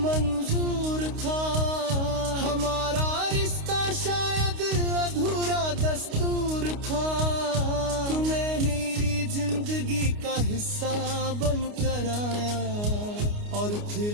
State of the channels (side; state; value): left; late; 29 ms